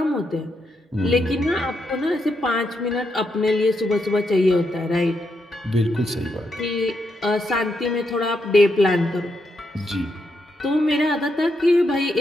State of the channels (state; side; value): normal; both; correlation 0.81